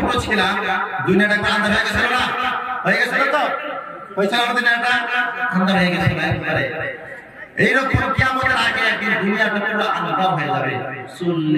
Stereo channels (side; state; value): both; identical; correlation 1.00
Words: ছিলাম দুনিয়াটা একবার আন্ধার হয়ে গেছিল না? হয়ে গেছিল তো? হয়েছিল আমাদের দুনিয়াটা আন্ধার হয়ে গেছিল একবারে। এইরকম কিয়ামতের আগে একদিন দুনিয়াটা পুরো আন্ধার হয়ে যাবে,